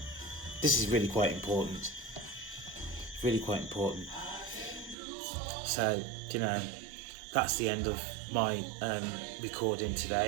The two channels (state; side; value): drops out; left; at 5.0 s